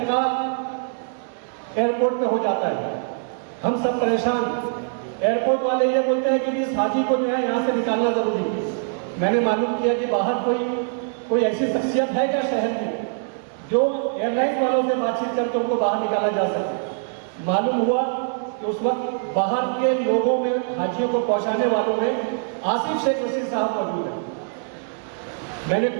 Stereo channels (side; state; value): left; silent; 63 dB below the other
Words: एयरपोर्ट पे हो जाता है, हम सब परेशान। एयरपोर्ट वाले ये बोलते हैं कि इस हाजी को जो है यहाँ से निकालना जरूरी है। मैंने मालूम किया कि बाहर कोई ऐसी शख्सियत है क्या शहर में जो एयरलाइन वालों से बातचीत करके उनको बाहर निकाला जा सके। मालूम हुआ कि उस वक्त बाहर के लोगों में हाजियों को पहुंचाने वालों में आसिफ शेख रशीद साहब मौजूद है। मैंने